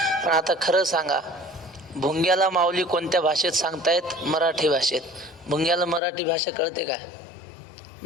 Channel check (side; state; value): right; drops out; at 6.0 s